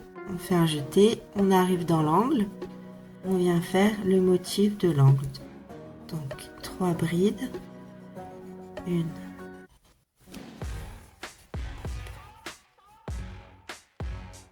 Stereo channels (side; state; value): both; identical; correlation 1.00